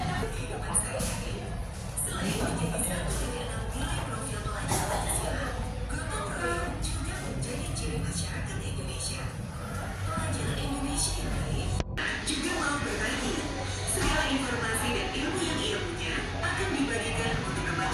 Juga mau berbagi. Segala informasi dan ilmu yang ia punya akan dibagikan untuk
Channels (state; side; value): identical; both; correlation 1.00